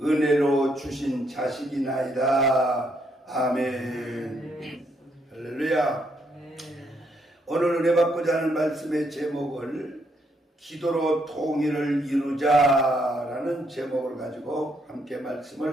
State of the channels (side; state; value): both; normal; correlation 0.74